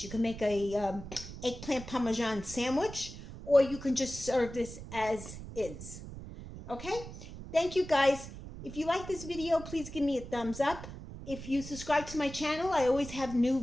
You can make a eggplant parmesan sandwich, or you can just serve this as is. Okay? Thank you, guys. If you like this video, please give me a thumbs up. If you subscribe to my channel, I always have new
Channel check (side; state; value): right; noise; rumble, 12 dB below the sound